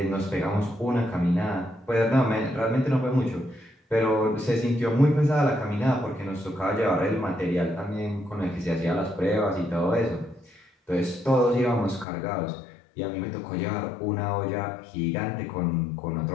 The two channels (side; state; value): right; drops out; at 12.1 s